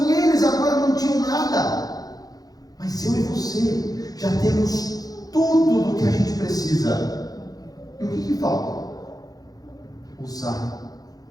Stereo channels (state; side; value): late; right; 0.18 ms